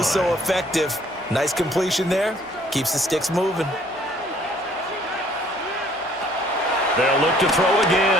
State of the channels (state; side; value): noise; left; hum, 30 dB below the sound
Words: so effective. Nice completion there. Keeps the sticks moving. They'll look to throw